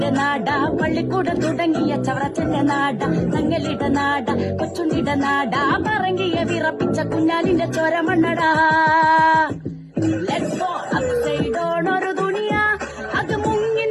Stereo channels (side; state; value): both; identical; correlation 1.00